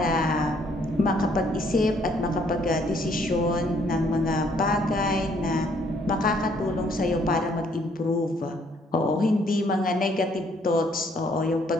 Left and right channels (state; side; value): normal; both; correlation 0.66